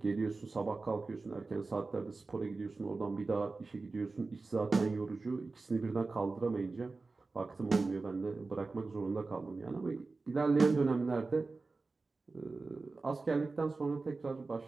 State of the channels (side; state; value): left; quieter; 3.8 dB